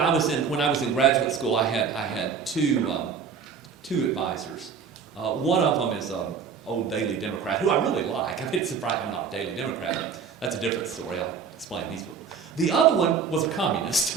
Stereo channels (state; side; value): quieter; left; 6.2 dB